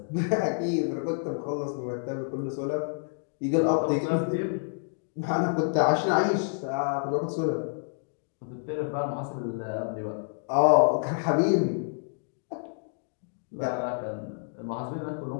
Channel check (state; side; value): silent; right; digital silence